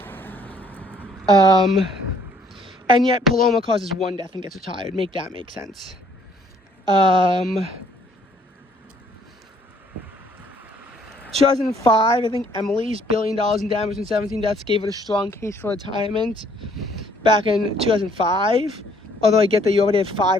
And yet Paloma causes 1 death and gets retired. Make that make sense. 2005, I think Emily's $1 billion in damage and 17 deaths gave it a strong case for retirement back in 2005. Although I get that you already have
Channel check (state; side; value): normal; both; correlation 0.62